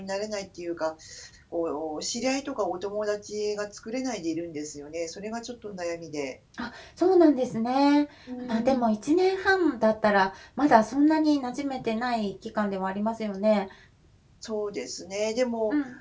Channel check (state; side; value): identical; both; correlation 1.00